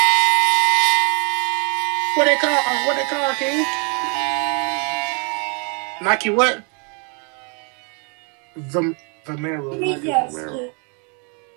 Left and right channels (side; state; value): left; quieter; 36.4 dB